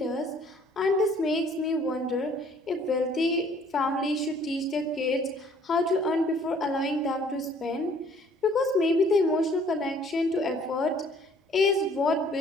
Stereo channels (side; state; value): both; normal; correlation 0.58